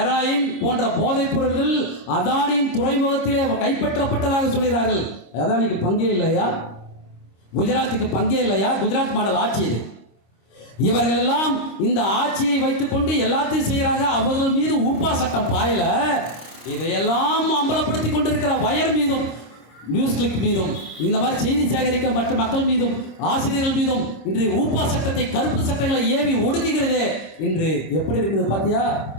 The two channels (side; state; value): right; late; 26 ms